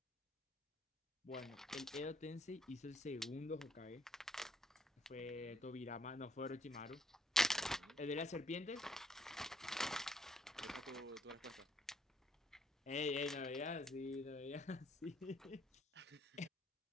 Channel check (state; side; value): normal; both; correlation 0.68